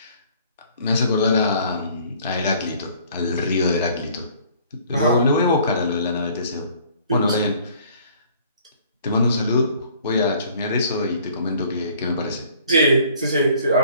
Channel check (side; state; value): both; inverted; correlation -0.56